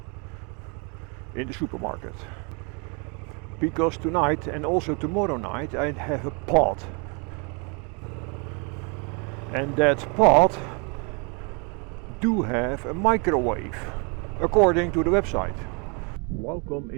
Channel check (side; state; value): left; quieter; 33.7 dB